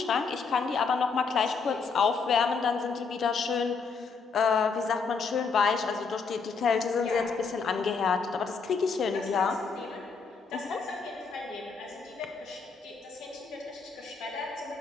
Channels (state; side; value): quieter; right; 5.1 dB